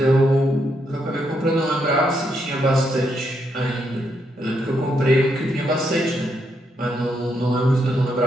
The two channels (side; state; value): both; normal; correlation 0.78